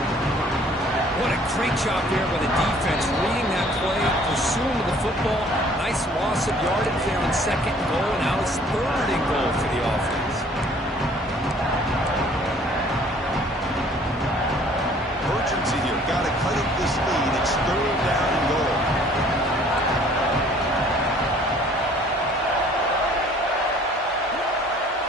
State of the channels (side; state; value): both; normal; correlation 0.55